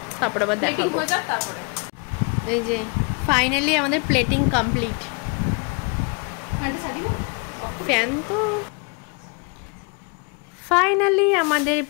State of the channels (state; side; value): quieter; right; 33.7 dB